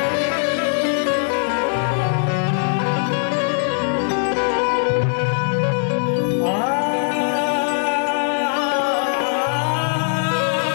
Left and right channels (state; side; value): silent; right; 66 dB below the other